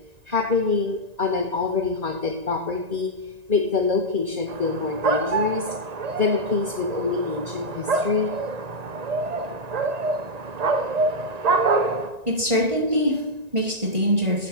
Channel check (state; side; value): late; left; 1.9 ms